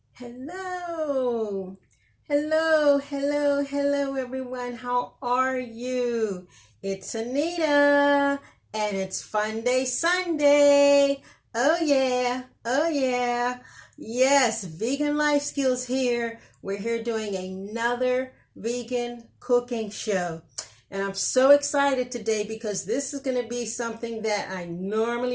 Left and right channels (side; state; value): both; identical; correlation 1.00